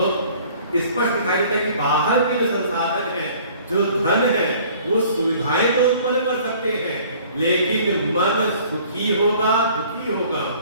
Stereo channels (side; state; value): both; inverted; correlation -0.52